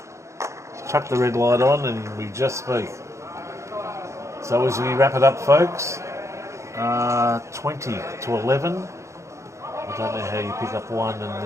Chuck the red light on and we just speak. So as we wrap it up, folks, 20 to 11. I don't know how you pick up one and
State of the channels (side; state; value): left; late; 0.14 ms